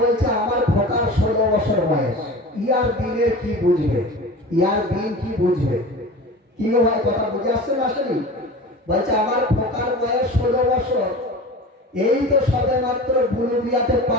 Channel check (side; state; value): both; normal; correlation 0.35